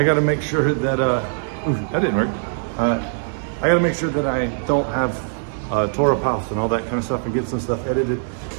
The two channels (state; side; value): silent; left; digital silence